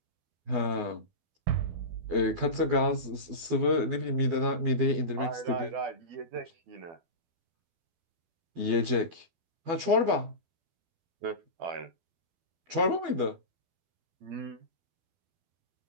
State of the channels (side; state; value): left; late; 12 ms